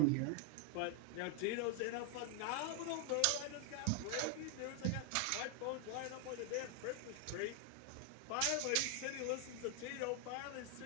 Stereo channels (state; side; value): different; both; correlation 0.01